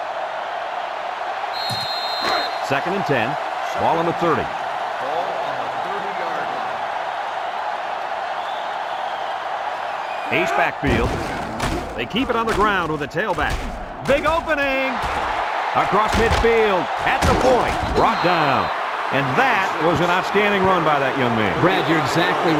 Second and 10. Ball on the 30. Ace backfield. They keep it on the ground with a tailback. Big opening. Across midfield. At the point. Brought down. And that was an outstanding run by that young man. Brad, you're exactly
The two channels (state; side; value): identical; both; correlation 1.00